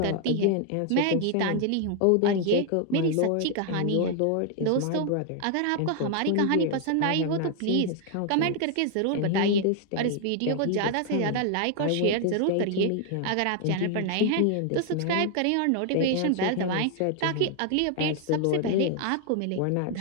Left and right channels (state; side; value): different; both; correlation 0.00